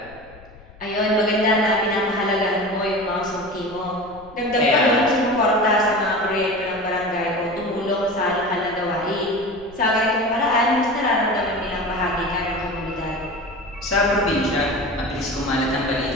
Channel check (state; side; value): noise; left; rumble, 22 dB below the sound